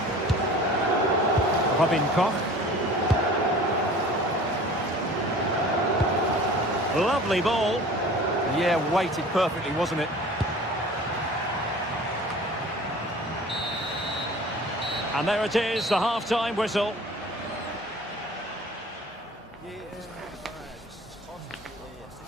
Robin Koch. Lovely ball. Yeah, weighted perfectly, wasn't it? And there it is, the half-time whistle.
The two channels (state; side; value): normal; both; correlation 0.44